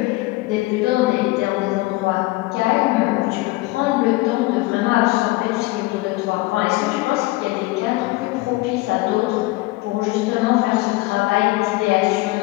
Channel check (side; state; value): right; quieter; 21.2 dB